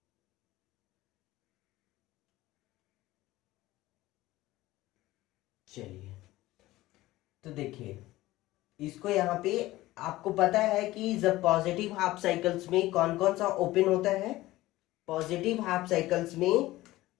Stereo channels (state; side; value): quieter; right; 17.3 dB